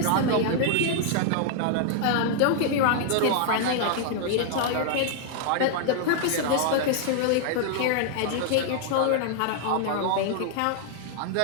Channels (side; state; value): both; different; correlation 0.00